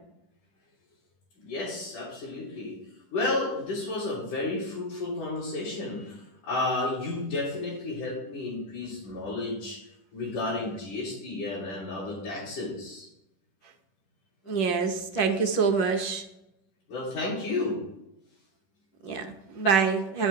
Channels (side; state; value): right; late; 10 ms